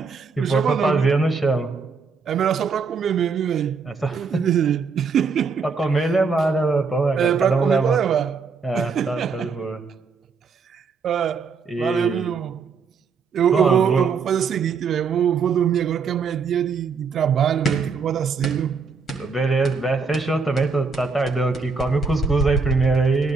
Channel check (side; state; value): left; quieter; 5.1 dB